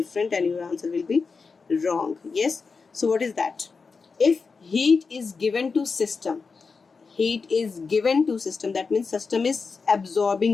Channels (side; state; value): right; quieter; 4.8 dB